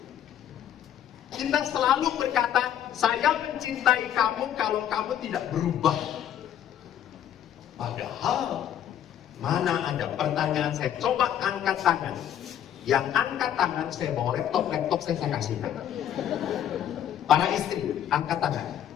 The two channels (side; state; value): right; quieter; 10.4 dB